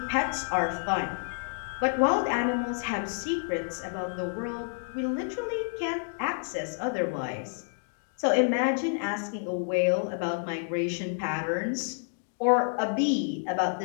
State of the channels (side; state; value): right; silent; digital silence